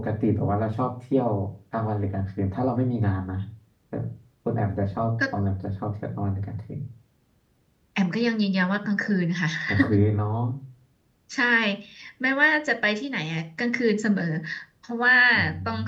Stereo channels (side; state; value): both; identical; correlation 1.00